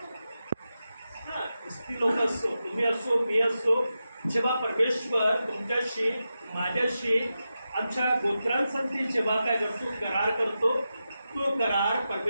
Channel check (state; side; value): inverted; both; correlation -0.91